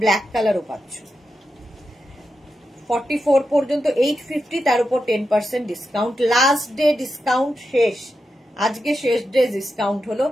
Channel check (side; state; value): both; normal; correlation 0.88